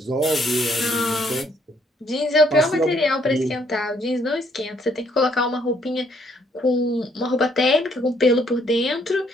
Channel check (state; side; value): normal; both; correlation 0.68